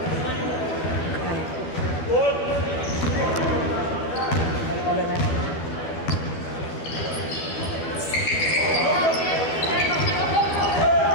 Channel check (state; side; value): late; right; 12 ms